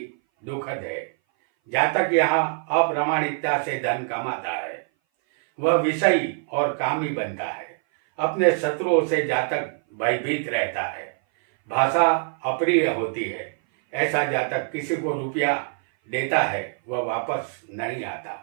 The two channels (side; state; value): left; silent; 58 dB below the other